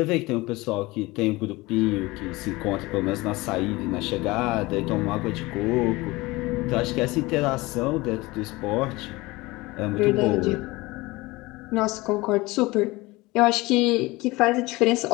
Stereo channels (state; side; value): quieter; right; 21.5 dB